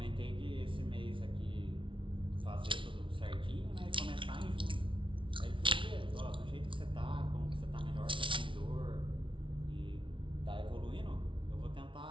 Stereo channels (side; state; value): left; late; 0.25 ms